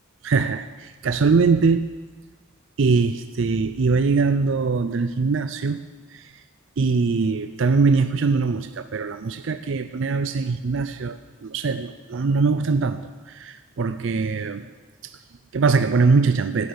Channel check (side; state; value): left; quieter; 4.1 dB